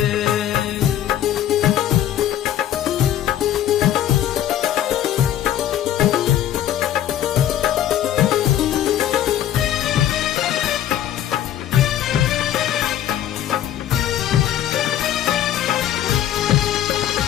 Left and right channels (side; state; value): right; quieter; 11.4 dB